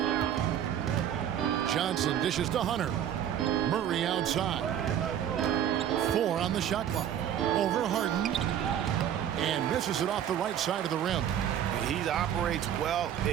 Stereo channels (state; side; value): quieter; left; 10.0 dB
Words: Johnson dishes to Hunter. Murray outside. 4 on the shot clock. Over Harden. And misses it off the right side of the rim. He operates well